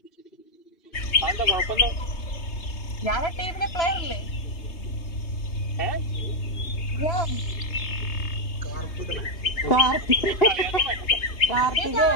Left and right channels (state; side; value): late; right; 3.2 ms